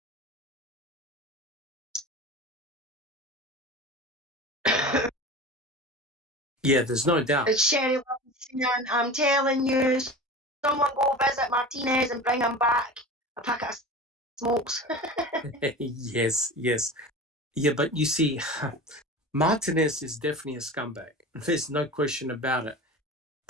Yeah, there's no doubt. It's Sherry Wilson. I'm telling you, someone go visit Martinez and bring him back a packet of smokes. Yes. Yeah, but you see, Martinez is definitely a scumbag. There's no question about it.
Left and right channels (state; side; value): normal; both; correlation 0.32